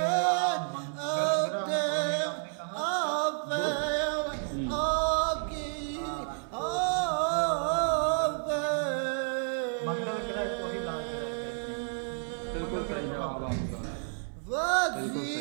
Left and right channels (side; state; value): left; silent; 56 dB below the other